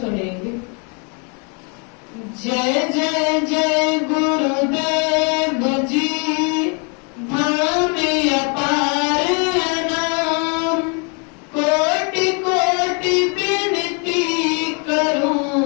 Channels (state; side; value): quieter; right; 36.0 dB